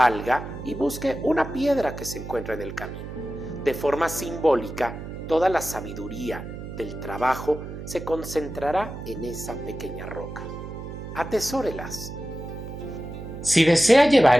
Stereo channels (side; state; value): right; noise; hum, 10 dB below the sound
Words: y busque una piedra que se encuentra en el camino. De forma simbólica, toda la sabiduría del trabajo se concentrará en esa pequeña roca. Atesórelas. Si desea llevar